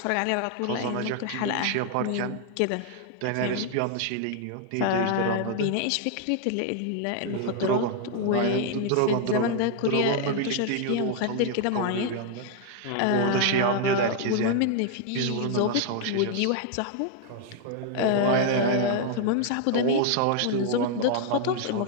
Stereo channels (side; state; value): both; different; correlation 0.00